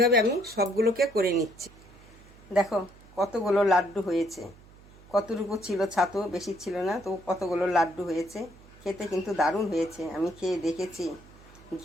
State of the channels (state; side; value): noise; right; hum, 23 dB below the sound